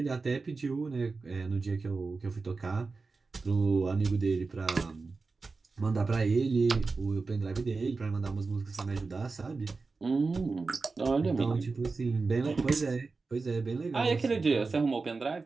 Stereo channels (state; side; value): quieter; left; 4.1 dB